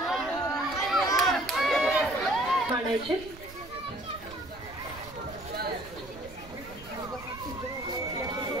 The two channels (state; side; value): noise; right; rumble, 18 dB below the sound